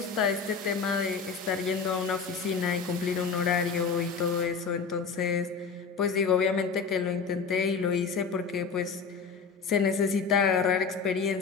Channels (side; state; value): right; quieter; 5.4 dB